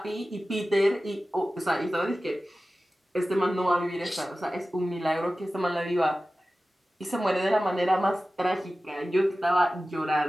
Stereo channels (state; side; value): normal; both; correlation 0.95